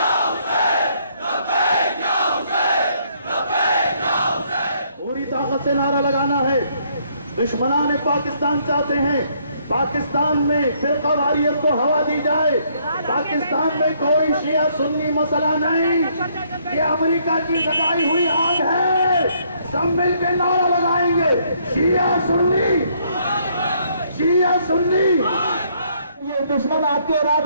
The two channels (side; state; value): both; inverted; correlation -0.68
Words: पूरी ताकत से नारा लगाना है। दुश्मनान पाकिस्तान चाहते हैं पाकिस्तान में फिरकावारियत को हवा दी जाए। पाकिस्तान में कोई शिया सुन्नी मसला नहीं, ये अमेरिका की लगाई हुई आग है। सब मिलकर नारा लगाएंगे, शिया सुन्नी, शिया सुन्नी। ये दुश्मन आपके